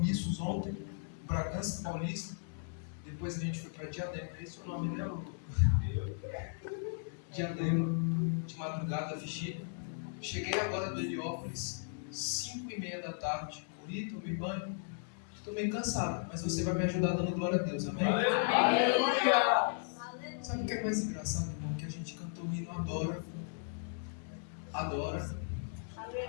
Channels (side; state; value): right; silent; digital silence